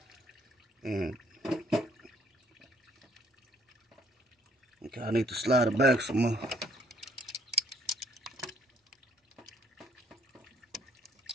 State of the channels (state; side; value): normal; both; correlation 0.63